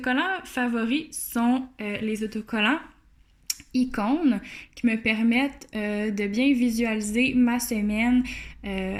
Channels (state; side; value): identical; both; correlation 1.00